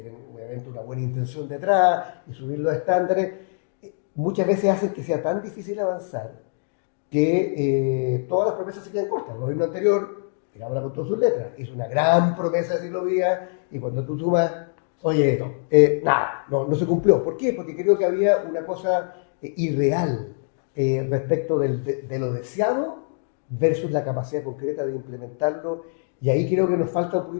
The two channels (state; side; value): silent; right; digital silence